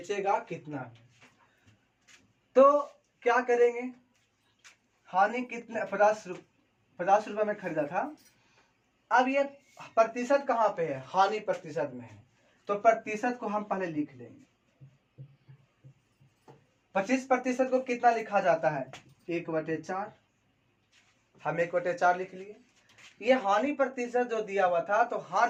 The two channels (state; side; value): identical; both; correlation 1.00